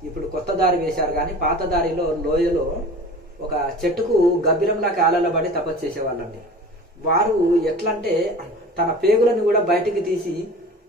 ఇప్పుడు కొత్త దారి వేశారు కానీ పాత దారిలో లోయలో ఒక చెట్టుకు గబ్బిలంలా కాలబడి తపస్సు చేసేవాళ్ళండి. వారు ఎట్లంటే తన పేగులను కూడా బయటికి తీసి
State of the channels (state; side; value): normal; both; correlation 0.39